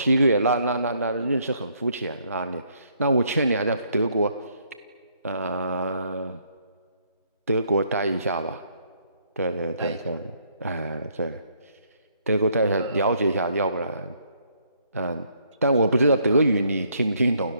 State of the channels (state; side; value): inverted; both; correlation -0.69